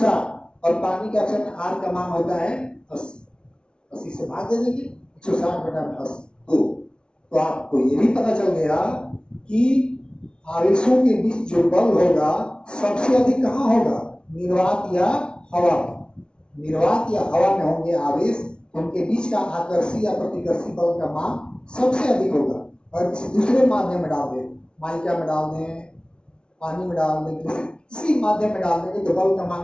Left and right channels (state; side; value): late; right; 0.055 ms